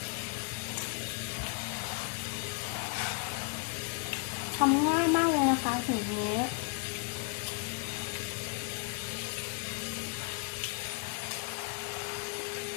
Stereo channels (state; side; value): quieter; right; 35.8 dB